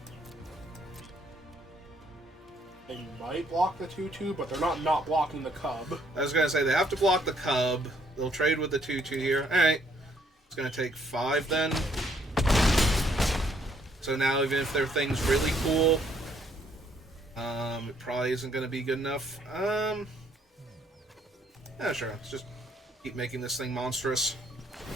They might block the 2/2, but they're not blocking the cub. I was going to say, they have to block the cub. They'll trade with the 2/2 here. Alright. It's going to take 5 then. So now, even if their thing's really cool, it probably isn't going to be good enough. Yeah, sure. Let's just keep making this thing monstrous.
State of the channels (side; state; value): both; normal; correlation 0.68